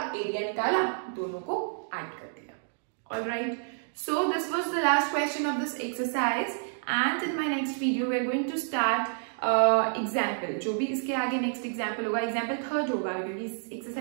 एरिया निकाला, दोनों को ऐड कर दिया। Alright, so this was the last question of this exercise and in my next video we are going to start example, जो भी इसके आगे नेक्स्ट एग्जाम्पल होगा, एग्जाम्पल थर्ड होगा क्योंकि इस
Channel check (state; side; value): silent; left; digital silence